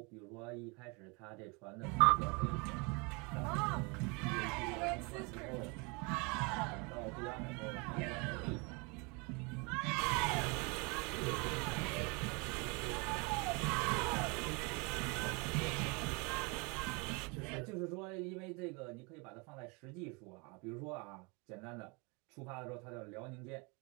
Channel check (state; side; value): quieter; left; 30.0 dB